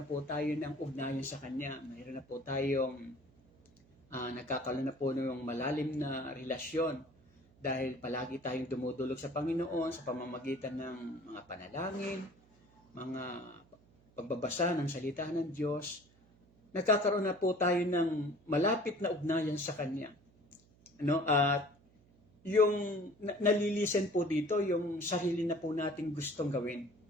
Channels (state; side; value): noise; right; hum, 29 dB below the sound